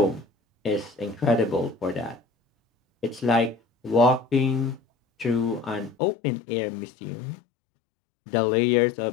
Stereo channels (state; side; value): drops out; right; at 6.0 s